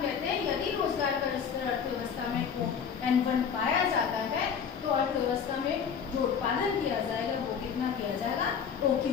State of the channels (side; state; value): right; quieter; 7.0 dB